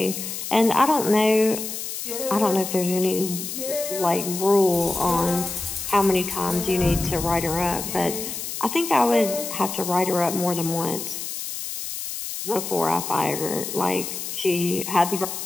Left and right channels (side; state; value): left; noise; hiss, 6 dB below the sound